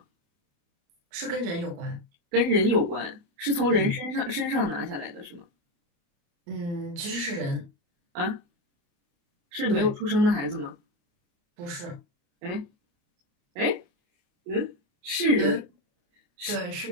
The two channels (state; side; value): late; left; 29 ms